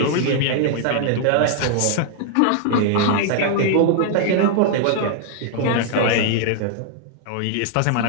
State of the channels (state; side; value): different; both; correlation -0.01